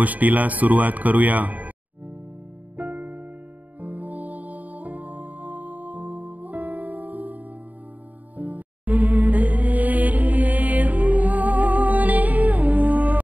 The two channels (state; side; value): late; left; 0.076 ms